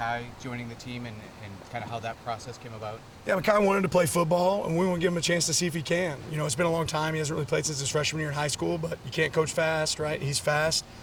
joining the team and kind of how that process came about? Yeah, Makai wanted to play football, and we want to give him a chance to see if he can. You know, it's been a long time. He hasn't really played since his freshman year in high school, but you can't coach fast, right? He's fast.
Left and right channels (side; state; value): both; identical; correlation 1.00